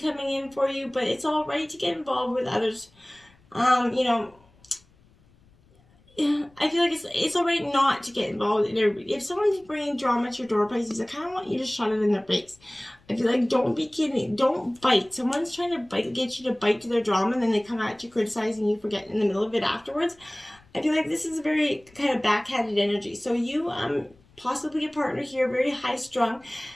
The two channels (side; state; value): left; noise; rumble, 30 dB below the sound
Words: coming in for you, but it's all right to get involved with others. You know, I feel like it's all right not to get involved in everybody. If someone's bringing drama to your door, Pisces, I kind of want you to shut it in their face. I feel like, don't be kidding. Don't bite. Someone's trying to get you to bite to their drama, and then they come at you criticizing you for getting in the middle of it afterwards. I feel like this is a very kind of backhanded energy. So you possibly a partner here, very high strung,